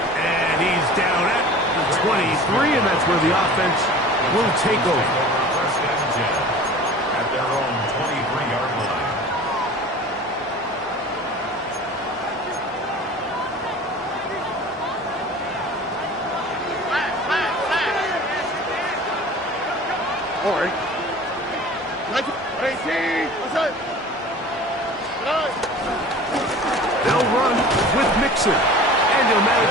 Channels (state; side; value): normal; both; correlation 0.41